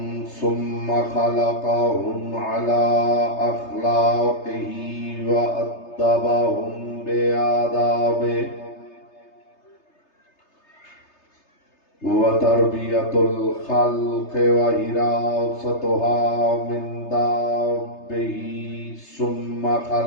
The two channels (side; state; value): right; late; 3.3 ms